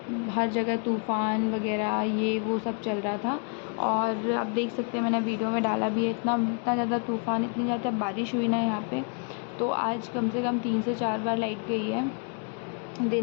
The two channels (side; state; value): right; quieter; 39.6 dB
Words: हर जगह तूफ़ान वगैरह ये वो सब चल रहा था और आप देख सकते हैं मैंने वीडियो में डाला भी है, इतना इतना ज़्यादा तूफ़ान, इतनी ज़्यादा बारिश हुई ना यहाँ पे। तो आज कम से कम 3 से 4 बार लाइट गई है